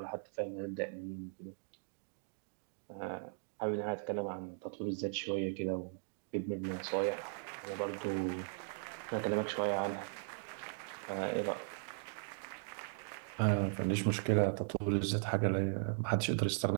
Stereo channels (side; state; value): left; silent; digital silence